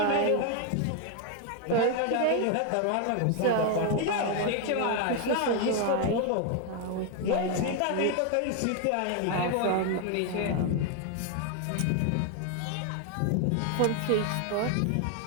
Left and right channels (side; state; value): both; different; correlation 0.01